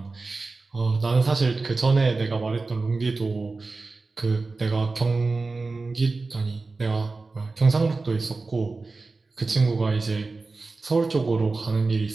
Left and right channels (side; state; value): left; quieter; 3.7 dB